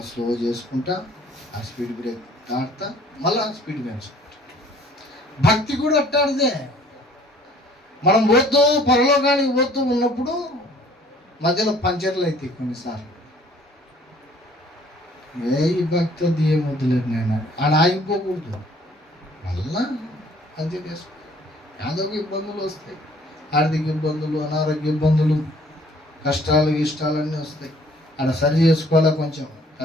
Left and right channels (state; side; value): normal; both; correlation 0.57